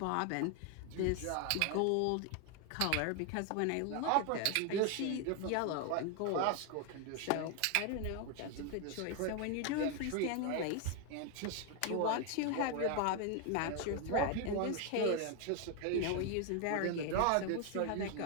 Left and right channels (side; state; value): both; different; correlation 0.01